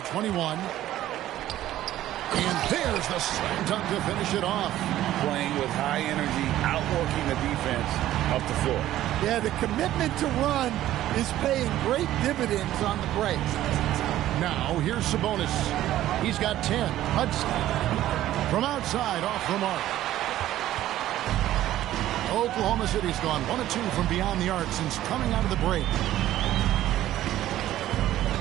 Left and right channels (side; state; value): left; quieter; 13.6 dB